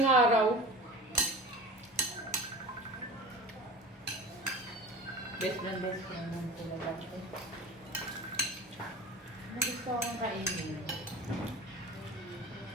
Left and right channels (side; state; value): both; normal; correlation 0.36